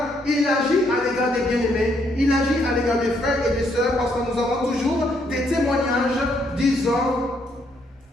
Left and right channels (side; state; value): both; normal; correlation 0.72